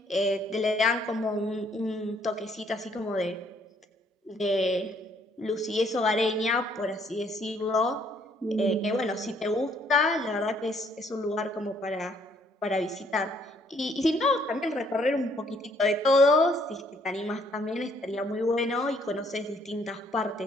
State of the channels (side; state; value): both; normal; correlation 0.66